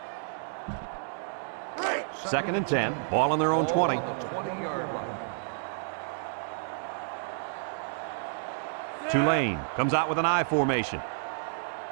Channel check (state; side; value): silent; left; digital silence